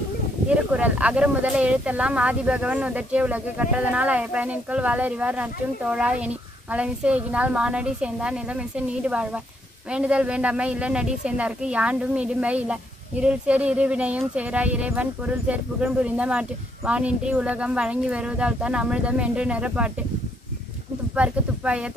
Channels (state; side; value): normal; both; correlation 0.73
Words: திருக்குறள். அகர முதல எழுத்தெல்லாம் ஆதிபகவன் உதற்றிய உலகு கற்றதனால் பயனின்கொள் வாழறிவார் நற்றும் தோழா எனி மலமிசை எகினால் மானடி சேர்ந்தார் நிலமிசை நீடு வாழ்வார். வேண்டுதல் வேண்டாமை இல்லை நடி சேர்ந்தார்க்கு யாண்டும் இடும்பை இல்லை. இருள் சேர் இருவினையும் சேரா இறைவன் பொருள் சேர் புகழ் புரிந்த மாட்டு வானின்றி உலகம் வழங்கி வருவதால் தான் அமிர்தம் என்று நிறப்பாட்டு. துப்பார்க்கு துப்பாய